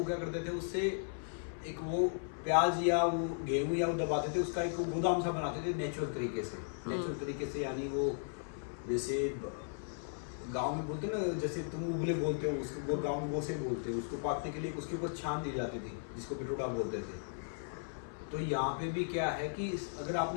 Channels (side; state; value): right; silent; 54 dB below the other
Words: क्या करते थे, उससे एक वो प्याज या वो गेहूं या वो दबाते थे, उसका एक गोदाम सा बनाते थे नेचुरल तरीके से। नेचुरल तरीके से यानी वो जैसे गांव में बोलते ना, जैसे तुम उबले बोलते हो उसको, गांव में गोसे बोलते हो, उसको पाकने के लिए उसके ऊपर छान दी जाती थी, जिसको पिटोड़ा बोलते थे। तो यहाँ पे भी क्या है कि अगर